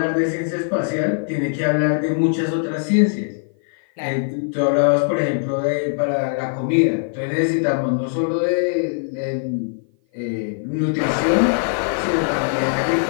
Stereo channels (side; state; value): right; silent; 56 dB below the other